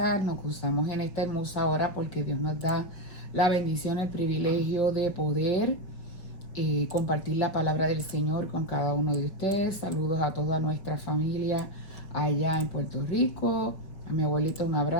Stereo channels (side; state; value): right; late; 5.3 ms